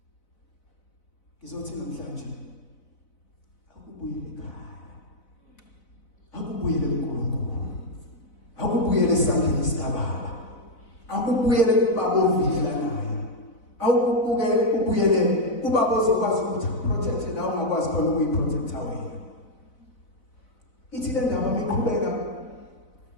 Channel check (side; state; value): right; late; 3.9 ms